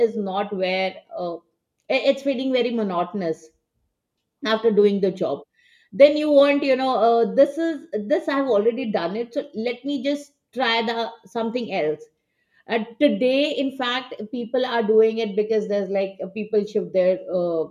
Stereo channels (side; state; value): both; identical; correlation 1.00